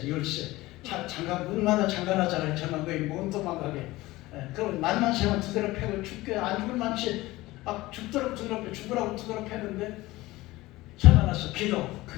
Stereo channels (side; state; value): right; quieter; 18.9 dB